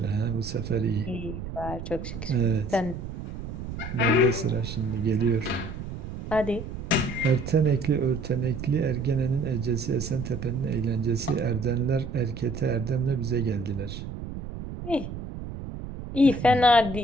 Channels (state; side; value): noise; right; rumble, 8 dB below the sound